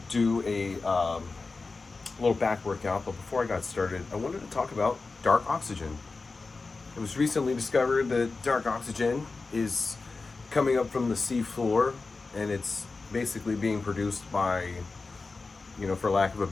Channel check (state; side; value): quieter; right; 4.0 dB